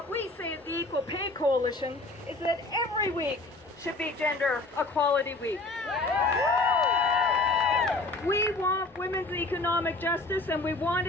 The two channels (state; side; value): quieter; right; 3.0 dB